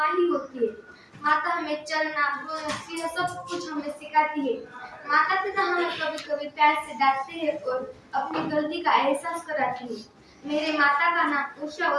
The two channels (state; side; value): identical; both; correlation 1.00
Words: ही होती है। माता हमें चलना, बोलना, यह सब कुछ हमें सिखाती है। माता पिता हमें कभी कभी प्यार से डांटते हैं और अपनी गलती का एहसास कराती है। मेरे माता का नाम उषा